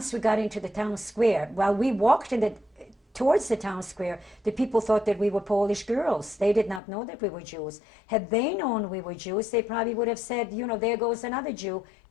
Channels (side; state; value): right; drops out; at 6.8 s